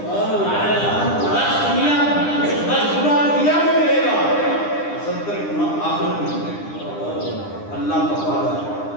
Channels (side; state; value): right; late; 9.9 ms